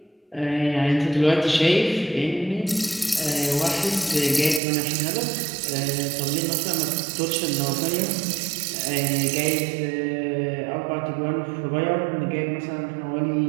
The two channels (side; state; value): left; drops out; at 4.6 s